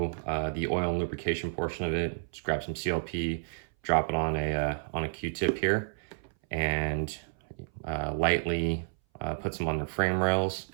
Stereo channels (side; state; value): left; silent; 57 dB below the other